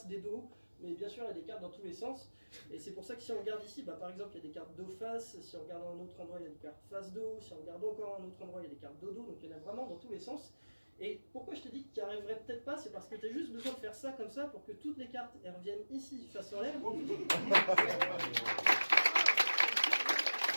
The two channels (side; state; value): both; inverted; correlation -1.00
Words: des dos, mais bien sûr, il y a des cartes dans tous les sens. Et c'est pour ça que si on regarde ici, bah, par exemple, il y a des cartes dos-face, si on regarde à un autre endroit, il y a des cartes face-dos, si on regarde encore à un autre endroit, il y a des cartes dos-dos, donc il y en a vraiment dans tous les sens. Et pourquoi je te dis que tu n'y arriverais peut-être pas, c'est parce que tu as juste besoin de faire ça comme ça pour que toutes les cartes elles reviennent ici, face en l'air.